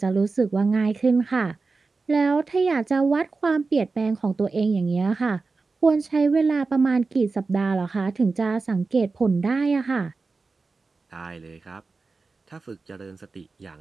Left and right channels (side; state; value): left; quieter; 4.1 dB